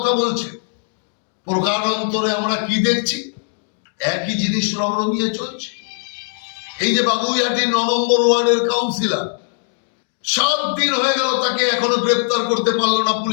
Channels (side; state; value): right; silent; digital silence